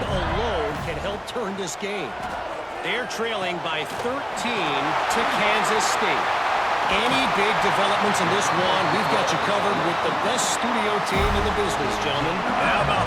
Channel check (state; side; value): identical; both; correlation 1.00